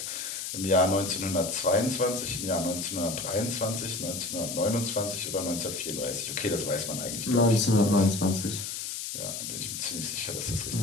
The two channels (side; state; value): left; noise; hiss, 5 dB below the sound